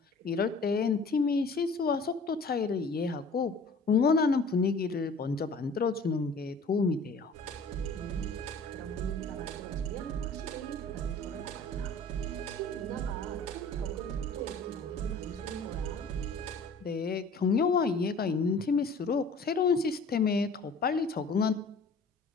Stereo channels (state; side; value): quieter; right; 3.1 dB